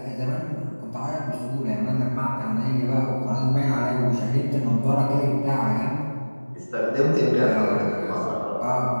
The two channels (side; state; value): both; inverted; correlation -1.00